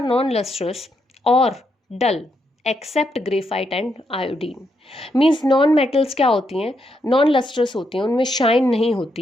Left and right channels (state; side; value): normal; both; correlation 0.79